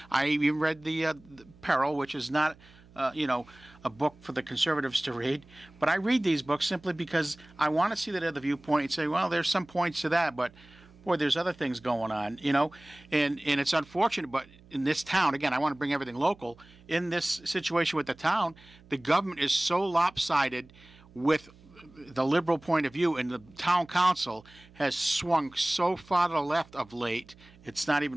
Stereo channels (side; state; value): right; noise; hum, 25 dB below the sound